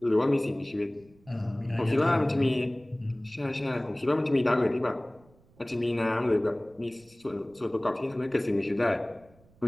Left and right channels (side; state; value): right; noise; rumble, 29 dB below the sound